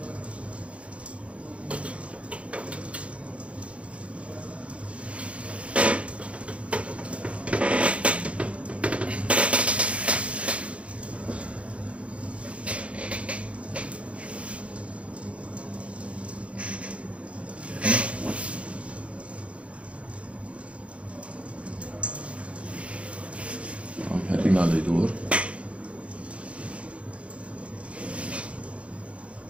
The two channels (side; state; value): left; late; 0.062 ms